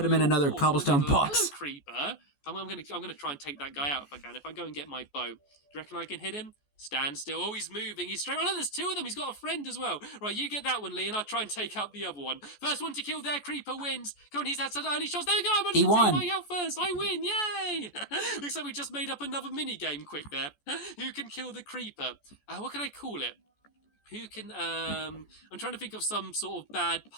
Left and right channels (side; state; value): right; late; 14 ms